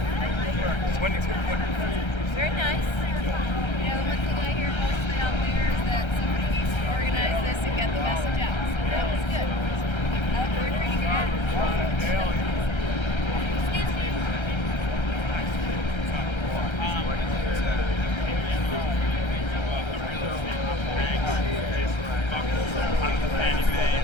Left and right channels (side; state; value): right; late; 1.3 ms